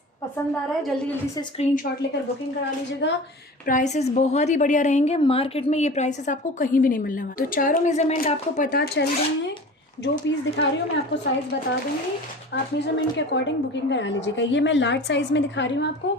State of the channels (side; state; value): both; normal; correlation 0.38